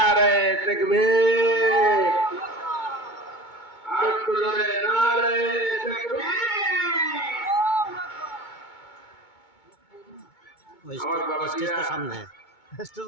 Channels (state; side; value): late; right; 2.2 ms